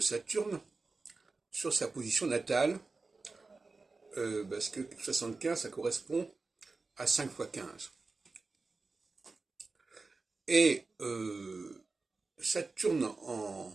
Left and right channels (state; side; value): quieter; left; 3.9 dB